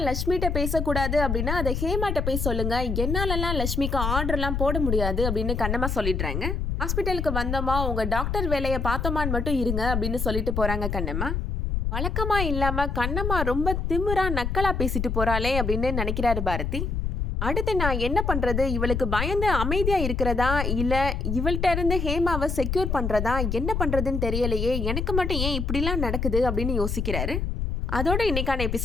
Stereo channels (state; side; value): noise; left; rumble, 1 dB below the sound